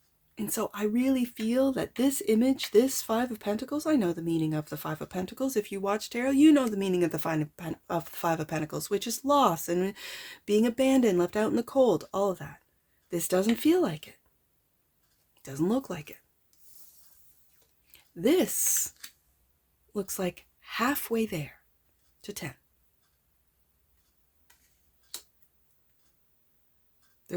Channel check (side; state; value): both; identical; correlation 1.00